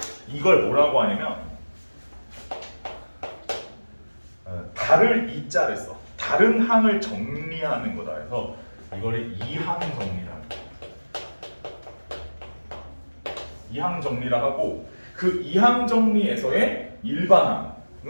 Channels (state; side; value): inverted; both; correlation -1.00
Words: 이걸 뭐라고 하냐면 달을 이자를 써. 다른 항을 정리하는 거다 해서 이거를 이항 정리라. 이항 정리라 하고 그 이항 정리에서의